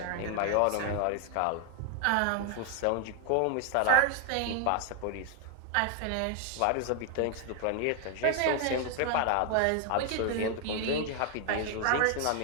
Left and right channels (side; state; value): both; different; correlation 0.00